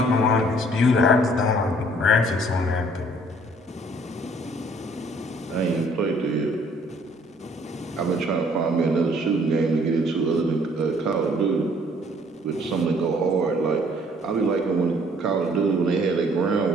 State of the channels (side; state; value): both; normal; correlation 0.59